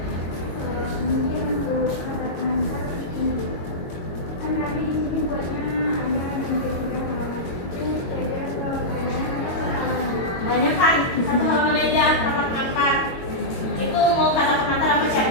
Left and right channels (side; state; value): right; late; 22 ms